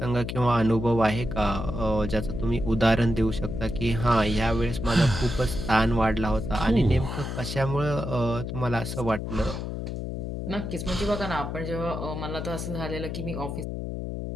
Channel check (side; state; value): left; noise; hum, 5 dB below the sound